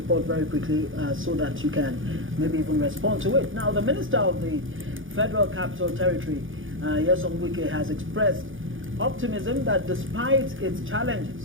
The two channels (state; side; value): late; left; 0.58 ms